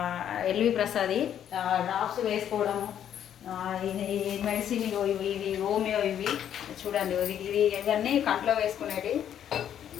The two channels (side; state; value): right; quieter; 9.8 dB